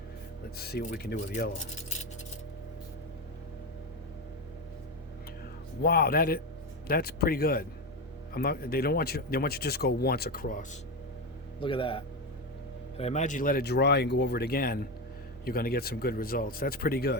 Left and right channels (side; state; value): both; normal; correlation 0.14